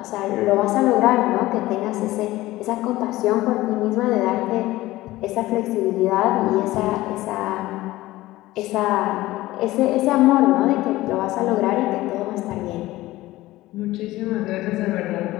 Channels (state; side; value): quieter; right; 17.4 dB